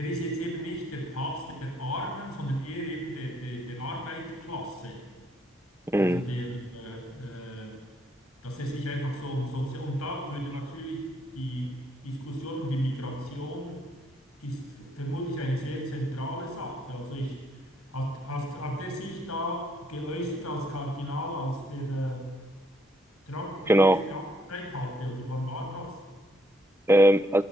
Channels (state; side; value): normal; both; correlation 0.71